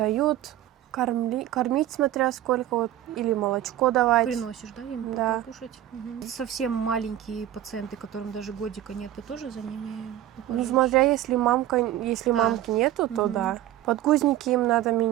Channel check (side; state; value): left; quieter; 12.9 dB